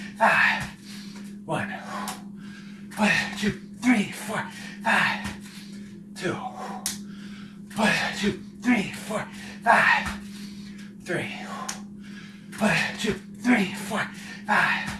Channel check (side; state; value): both; identical; correlation 1.00